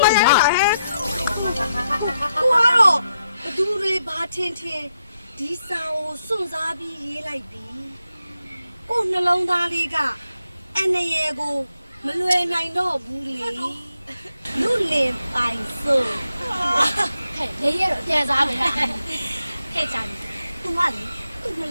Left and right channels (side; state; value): both; inverted; correlation -0.83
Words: မရဟဲ့ကိုကတော့ဘသူတွေဘာထင်ဒီစာကိုစွန့်စားပြီးရေးလိုက်ပြီကိုနှလုံးသားလေးကအန်နရေကိုမလွယ်နိုင်တော့ဘူးလေလူလင်ပိုင်စို့ ဟဲ့လေရတော့ပြန်စားမယ် ဟဲ့ကြာပြီသူကလေသူ့နှ